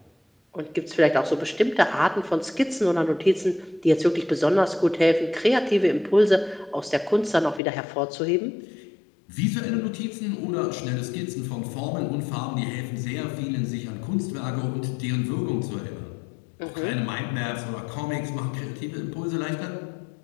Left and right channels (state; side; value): drops out; right; at 7.6 s